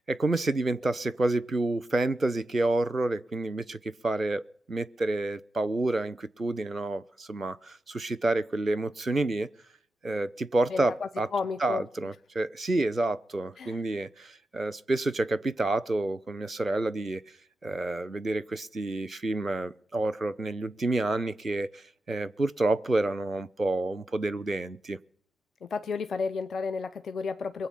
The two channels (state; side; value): normal; both; correlation 0.90